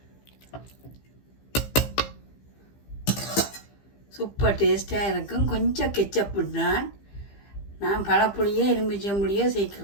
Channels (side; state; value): right; late; 15 ms